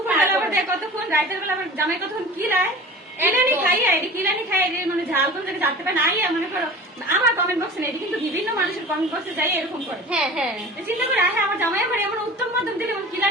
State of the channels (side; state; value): both; normal; correlation 0.38